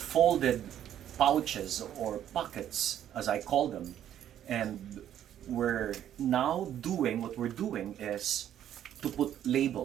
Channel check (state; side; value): quieter; left; 10.7 dB